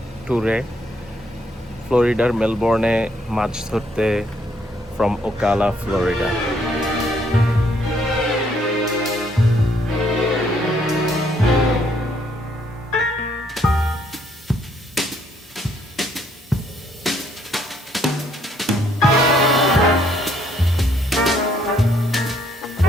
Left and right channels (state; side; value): normal; both; correlation 0.69